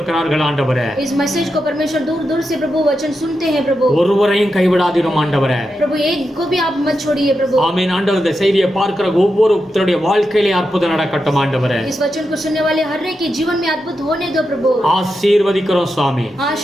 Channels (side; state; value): both; normal; correlation 0.87